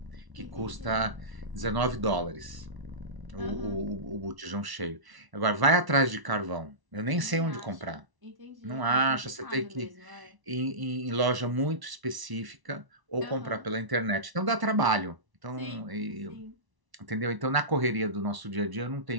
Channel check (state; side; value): late; left; 1.1 ms